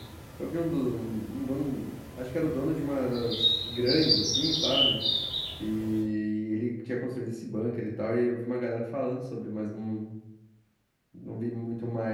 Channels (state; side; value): identical; both; correlation 1.00